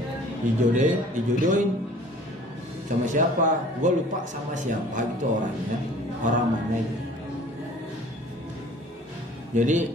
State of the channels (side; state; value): both; normal; correlation 0.50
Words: Dijodohin sama siapa? Gue lupa sama siapa gitu orangnya, orang mana gitu.